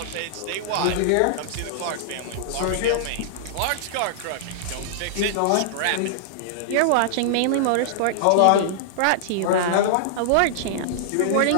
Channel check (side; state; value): both; different; correlation -0.02